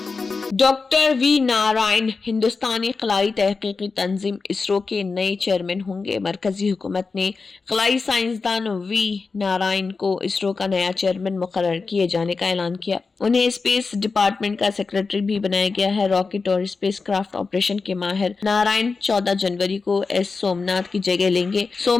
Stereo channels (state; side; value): quieter; right; 4.4 dB